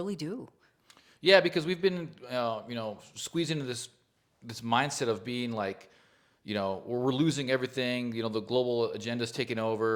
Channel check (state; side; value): identical; both; correlation 1.00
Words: do. Yeah, because we've been, squeezed into this mindset of being like, we're losing everything. The global agenda's taking